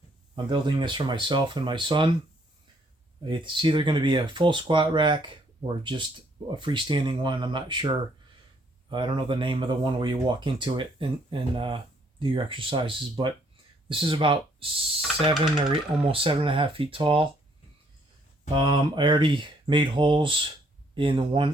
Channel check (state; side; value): normal; both; correlation 0.67